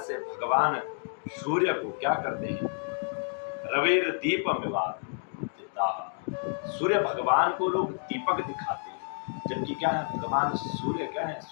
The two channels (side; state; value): right; silent; 58 dB below the other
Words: से भगवान सूर्य को क्या करते हैं रवेर दीपम विवाद, सूर्य भगवान को लोग दीपक दिखाते हैं, जबकि क्या है भगवान सूर्य क्या है